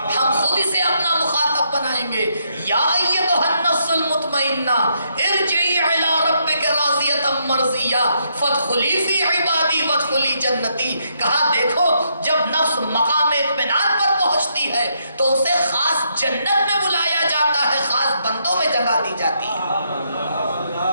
ہم خود اسے اپنا مخاطب بنائیں گے. یا ایتھا النفس المطمئنہ ارجعی الی ربک راضیۃ مرضیہ فادخلی فی عبادی وادخلی جنتی. کہا دیکھو جب نفس مقام اطمینان پر پہنچتی ہے تو اسے خاص جنت میں بلایا جاتا ہے, خاص بندوں میں جگہ دی جاتی ہے.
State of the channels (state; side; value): inverted; both; correlation -0.75